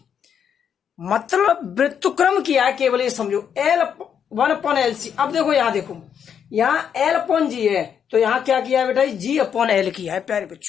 मतलब व्युत्क्रम किया है केवल, ये समझो। L 1 upon L C. अब देखो यहाँ देखो, यहाँ एल अपॉन जी है, तो यहाँ क्या किया है बेटा जी? जी अपॉन एल किया है प्यारे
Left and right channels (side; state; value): right; quieter; 8.0 dB